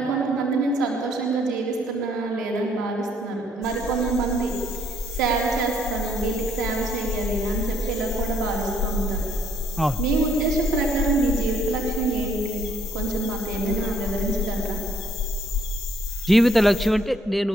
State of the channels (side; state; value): both; normal; correlation 0.67